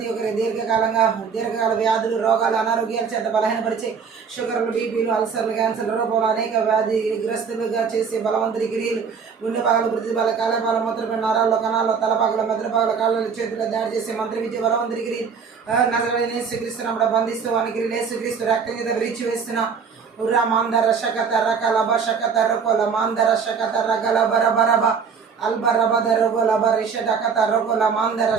ఒక్కరి దీర్ఘకాల వ్యాధులు, రోగాలు, అనారోగ్యాల చేత బలహీనపరిచే షుగర్లు, బీపీలు, అల్సర్లు, క్యాన్సర్లు, రూపంలో అనేక వ్యాధిగ్రస్తులుగా చేసే బలవంతుడి క్రియలు గుండె పగలు, వృద్ధి బల, కాలపాల, మూత్రపిండ నరాల్లో, కణాల్లో, తలపాకల, మెదడుపాకల, కాళ్ళ, చేతుల్లో దాడి చేసే మంత్ర విద్య, బలవంతుడి క్రియలు నజడనే యేసుక్రీస్తునామములో బంధిస్తూ అని క్రియలు యేసుక్రీస్తు రక్తం చేత విడిచివేస్తున్నా. ఉరా మాందర శకత రకల బషకత రకుల మాందర శకత రగల బరబరబ అల్బరబద రగుల బరిషటకత రకుల మాందర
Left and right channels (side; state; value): left; quieter; 6.1 dB